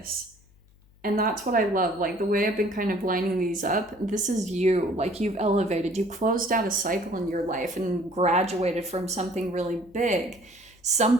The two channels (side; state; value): left; noise; hum, 29 dB below the sound